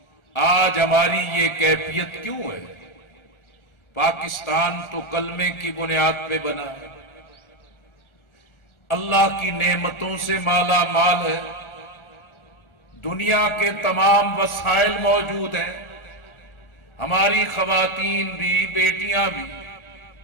آج ہماری یہ کیفیت کیوں ہے؟ پاکستان تو کلمے کی بنیاد پہ بنا ہے، اللہ کی نعمتوں سے مالا مال ہے، دنیا کے تمام وسائل موجود ہیں، ہماری خواتین بھی، بیٹیاں بھی،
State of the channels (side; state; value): right; late; 1.4 ms